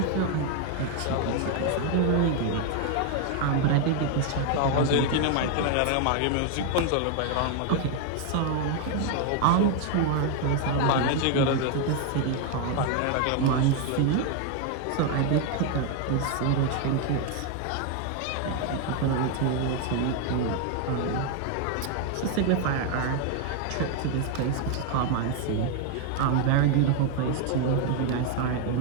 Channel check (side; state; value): both; different; correlation 0.00